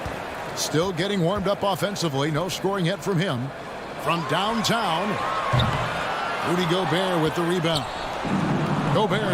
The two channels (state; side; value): identical; both; correlation 1.00